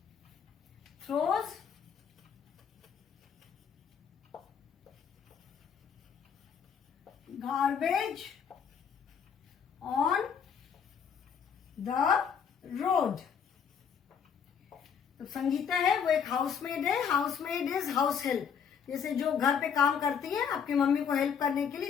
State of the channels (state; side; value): quieter; right; 7.2 dB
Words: throws garbage on the road. तो संगीता है वो एक हाउसमेड है। हाउसमेड इज हाउस हेल्प, जैसे जो घर पे काम करती है आपकी मम्मी को हेल्प करने के लिए,